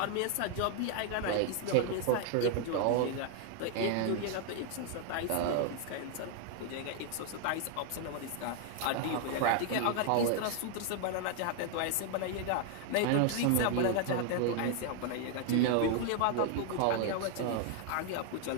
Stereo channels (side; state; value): both; different; correlation 0.00